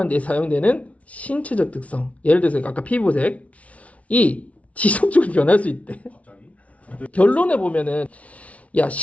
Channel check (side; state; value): right; late; 0.065 ms